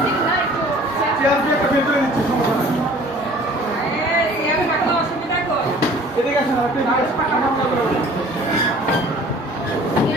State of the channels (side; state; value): both; normal; correlation 0.49